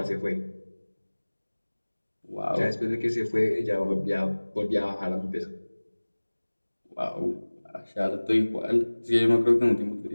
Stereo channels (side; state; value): both; inverted; correlation -1.00